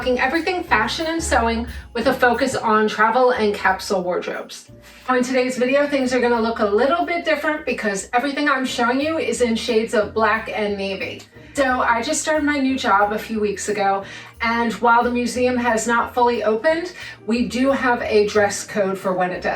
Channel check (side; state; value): both; identical; correlation 1.00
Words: everything fashion and sewing with a focus on travel and capsule wardrobes. In today's video, things are gonna look a little bit different because everything I'm showing you is in shades of black and navy. So I just started my new job a few weeks ago, and while the museum has not fully opened, we do have a dress code for when it